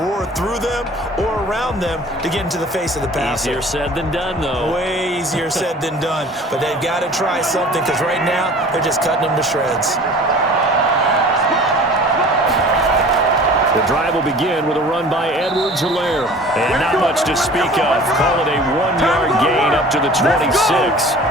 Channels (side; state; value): both; normal; correlation 0.45